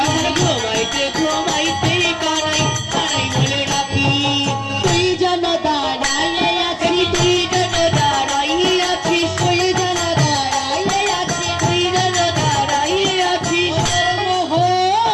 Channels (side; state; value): both; identical; correlation 1.00